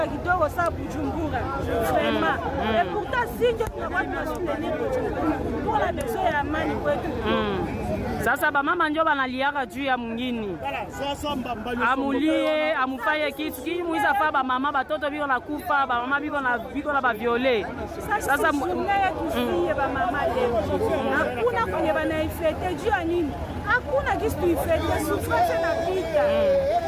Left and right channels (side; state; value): both; identical; correlation 1.00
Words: kidogo sa Bujumbura. Vraiment. Et pourtant si tunakuwa tunasoutenir Bujumbura. Tuko na besoin ya amani kwetu. Sasa ba mama ndio banaliaka juu ya mwingine. Amulie, amufaye kitu kii muiza fa ba mama batoto biko na kufa, ba mama biko na ba violer. Sasa mungaya tusiye ba mama leo. Hakuna kwenye banaifete juu ya nini? Hakuna kitu tuifete, souffrance na pita.